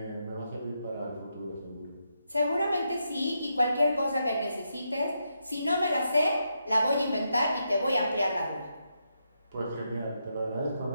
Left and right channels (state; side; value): inverted; both; correlation -0.82